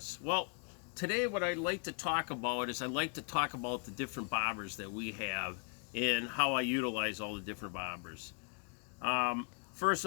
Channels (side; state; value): right; quieter; 37.2 dB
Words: Well, today what I'd like to talk about is the different bobbers that we have and how I utilize all the different bobbers. First